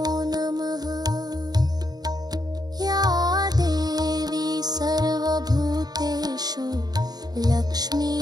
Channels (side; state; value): left; late; 0.19 ms